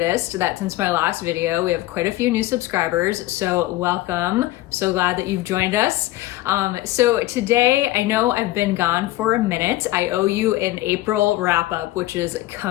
that since my last video, we have quite a few new subscribers, so welcome. So glad that you've joined us. So today, I know I've been gone for a minute. I owe you an April wrap up, which is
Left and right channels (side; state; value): right; quieter; 16.9 dB